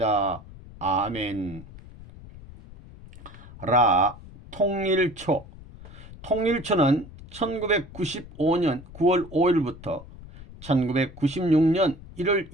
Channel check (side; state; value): left; noise; rumble, 18 dB below the sound